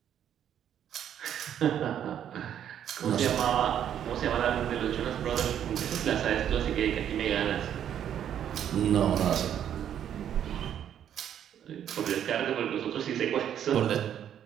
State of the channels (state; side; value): quieter; left; 9.8 dB